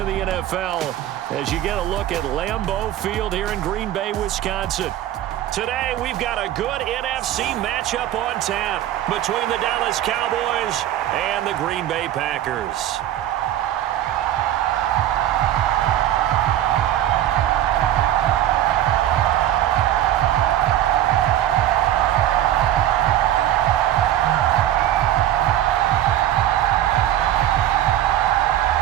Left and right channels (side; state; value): left; quieter; 12.4 dB